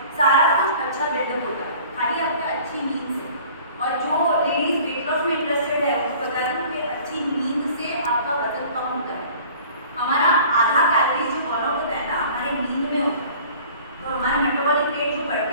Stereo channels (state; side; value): inverted; both; correlation -0.48